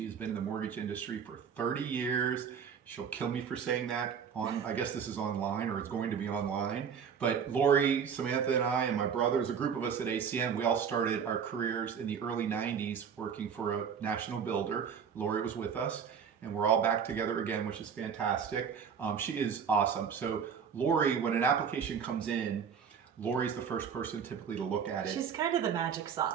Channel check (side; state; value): left; quieter; 7.1 dB